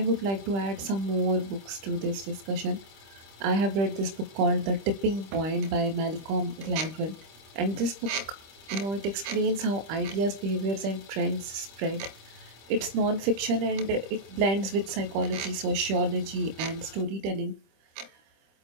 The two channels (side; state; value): left; late; 25 ms